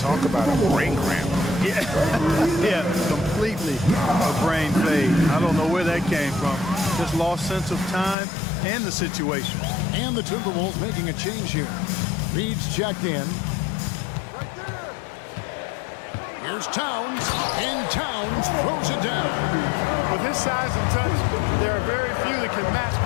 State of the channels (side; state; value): right; drops out; at 8.2 s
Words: about a brain cramp. Yeah, yeah, completely a brain fade. I don't know where that came from. Just lost sense of time and the situation. And the Timberwolves making a change here. Reed's checked in. Here's Towns, and Towns throws it down. With his size and touch, there are very few that can match